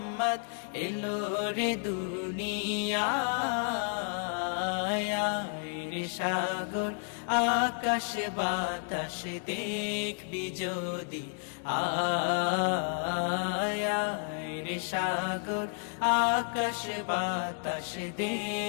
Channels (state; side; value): silent; right; 57 dB below the other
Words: এলো রে দুনিয়ায় রে সাগর আকাশ বাতাস দেখবি যদি আয় রে সাগর আকাশ বাতাস